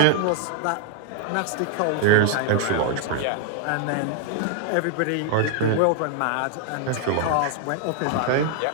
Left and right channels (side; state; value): both; different; correlation 0.00